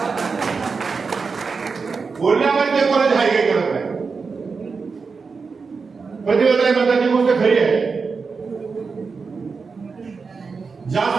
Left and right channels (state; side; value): quieter; left; 4.9 dB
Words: बोलण्यामध्ये ते कोणाची हायगे करत नाही. प्रतिबद्ध म्हणतात ती गोष्ट खरी आहे.